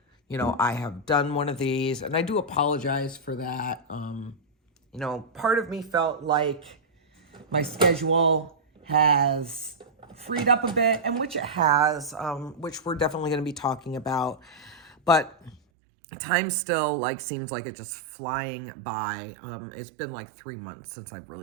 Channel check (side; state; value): left; drops out; at 15.6 s